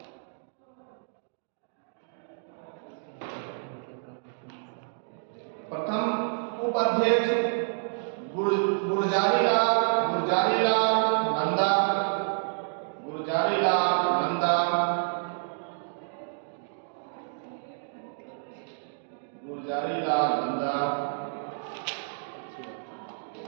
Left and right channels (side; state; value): left; silent; digital silence